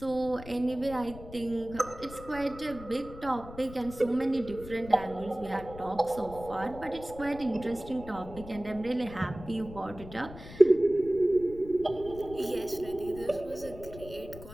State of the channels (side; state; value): left; noise; rumble, 15 dB below the sound